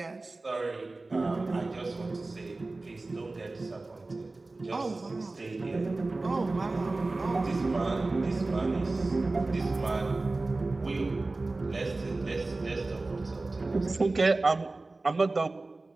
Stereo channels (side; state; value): left; quieter; 3.2 dB